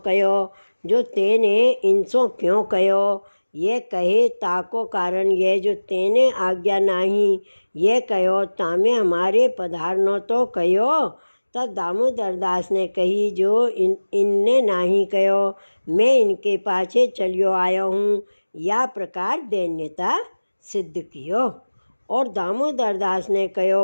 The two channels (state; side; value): inverted; both; correlation -1.00